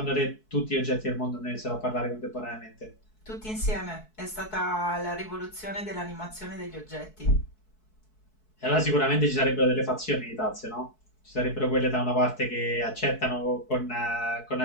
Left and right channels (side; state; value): right; late; 4.6 ms